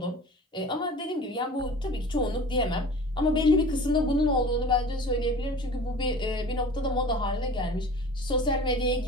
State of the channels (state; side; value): normal; both; correlation 0.41